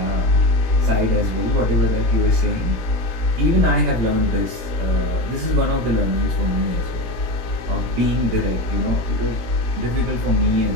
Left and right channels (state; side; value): late; left; 17 ms